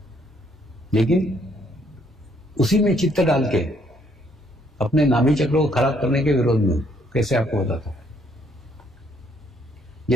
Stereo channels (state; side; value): normal; both; correlation 0.68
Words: लेकिन उसी में चित्त डाल के अपने नाभि चक्र को खराब करने के विरोध में हूं। कैसे आपको बताता हूं।